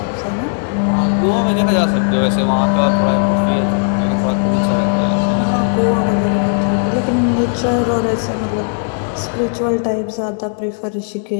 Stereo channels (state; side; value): silent; right; 60 dB below the other